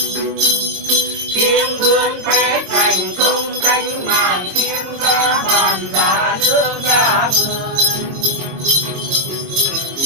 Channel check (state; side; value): late; left; 22 ms